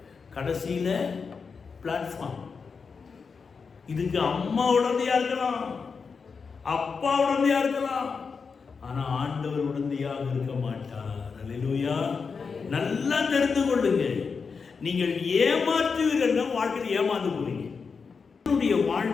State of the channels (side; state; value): right; quieter; 5.3 dB